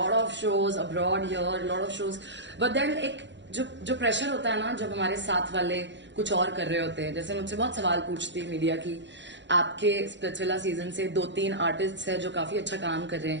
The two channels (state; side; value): late; left; 0.52 ms